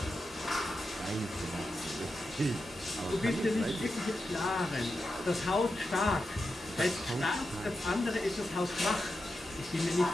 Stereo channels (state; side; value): normal; both; correlation 0.89